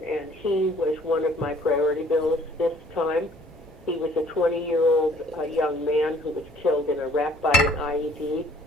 and he was one of my priority bills this time. He was a 20-year-old young man who was killed in Iraq by an IED,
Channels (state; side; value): normal; both; correlation 0.57